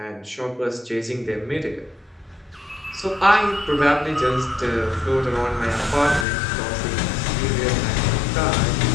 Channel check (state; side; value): drops out; right; at 6.2 s